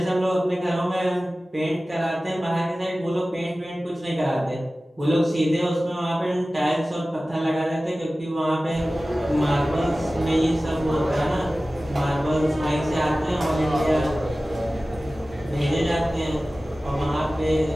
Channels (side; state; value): both; normal; correlation 0.96